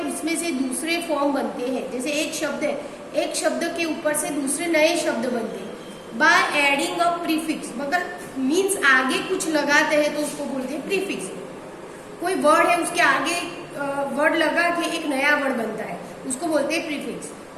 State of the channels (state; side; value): identical; both; correlation 1.00